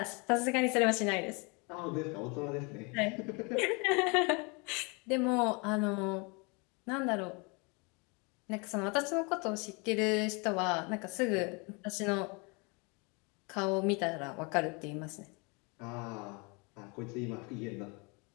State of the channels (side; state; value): right; quieter; 30.8 dB